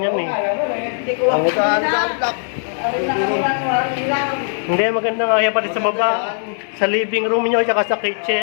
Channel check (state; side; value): silent; right; 67 dB below the other